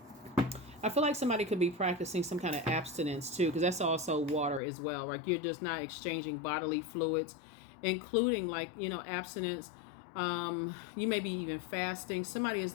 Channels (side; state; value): right; drops out; at 4.6 s